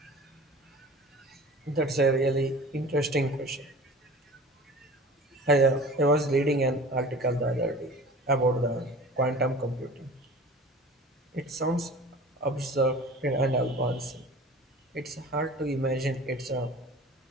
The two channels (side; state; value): both; normal; correlation 0.41